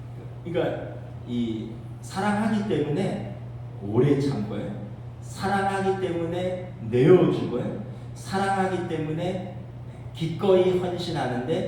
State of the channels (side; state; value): both; identical; correlation 1.00